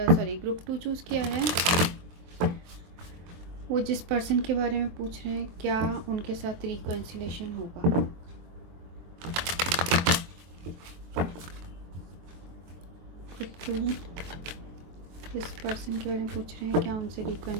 सॉरी ग्रुप 2 चूज़ किया है, वो जिस पर्सन के बारे में पूछ रहे हैं क्या उनके साथ रिकन्सिलेशन होगा। ग्रुप 2 जिस पर्सन के बारे में पूछ रहे हैं क्या उनसे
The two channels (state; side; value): late; left; 23 ms